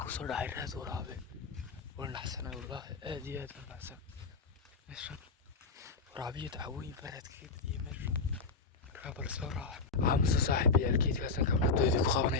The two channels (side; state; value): right; quieter; 4.2 dB